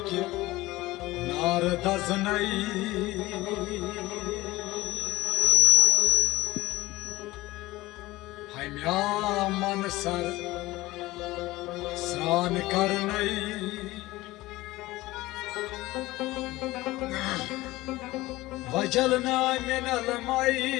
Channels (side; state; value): right; quieter; 18.7 dB